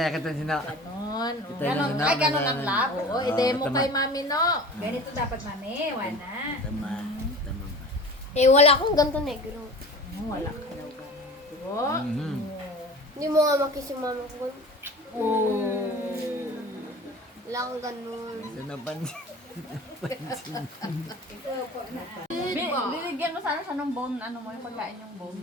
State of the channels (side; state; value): both; normal; correlation 0.39